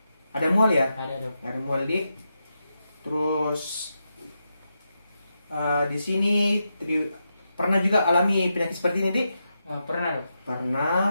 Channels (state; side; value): inverted; both; correlation -0.86